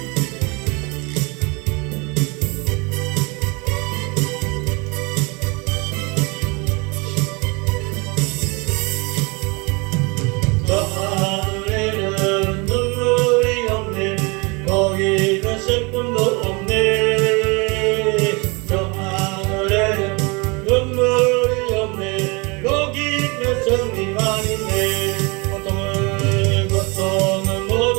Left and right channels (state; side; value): quieter; left; 28.6 dB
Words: 슬픔도 없네. 저 하늘에는 눈물이 없네. 거기는 승리만 있네. 고통은